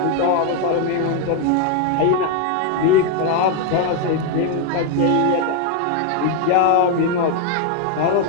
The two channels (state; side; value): different; both; correlation 0.00